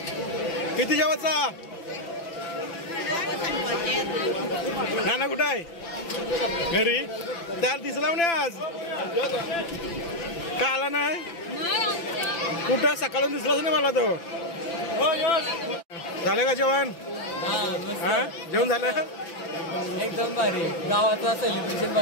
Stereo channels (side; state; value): right; late; 5.9 ms